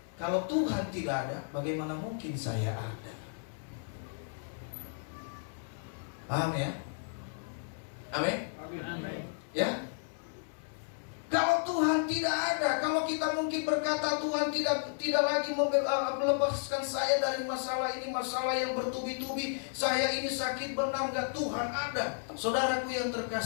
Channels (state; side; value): silent; right; 56 dB below the other